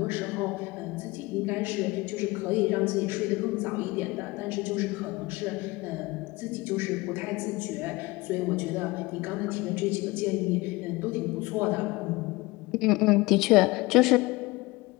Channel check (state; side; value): quieter; right; 21.9 dB